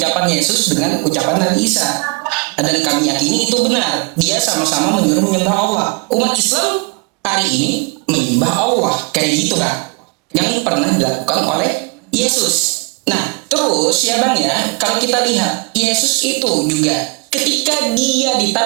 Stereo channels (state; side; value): quieter; left; 30.5 dB